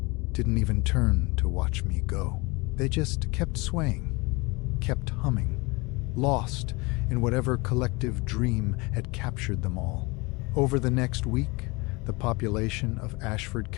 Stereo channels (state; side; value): quieter; right; 25.7 dB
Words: didn't even turn to watch me go. They just kept swaying, kept humming, lost in whatever collective dream had captured them all. Over the next week, the population of Ashford